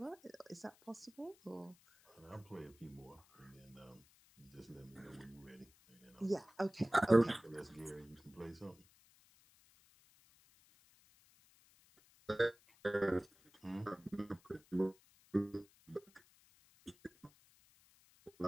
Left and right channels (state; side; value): noise; left; hiss, 28 dB below the sound